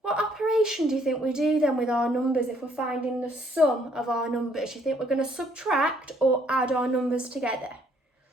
what operation do you think we do then with our numbers if we're finding the sum of our numbers? Do you think we're going to subtract or add our numbers together?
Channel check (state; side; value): normal; both; correlation 0.65